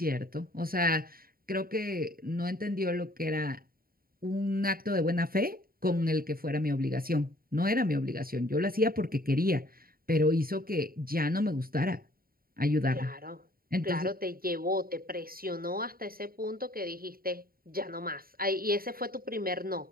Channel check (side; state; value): left; late; 0.43 ms